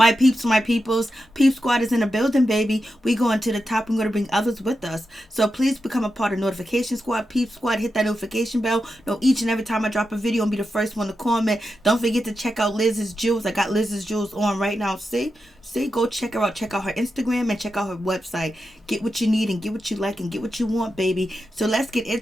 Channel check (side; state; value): both; normal; correlation 0.89